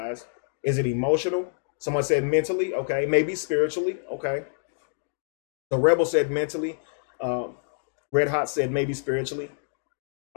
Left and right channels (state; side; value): silent; right; digital silence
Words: Is it emotional? Someone said mentally, okay. Maybe spiritually, okay. The Rebel said mentally. Red Hot said maybe spiritually.